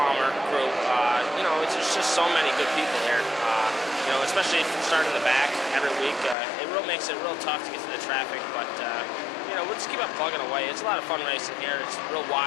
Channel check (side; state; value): right; drops out; at 6.4 s